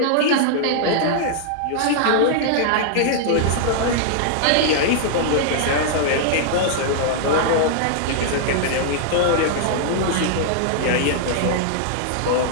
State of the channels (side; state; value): both; different; correlation -0.01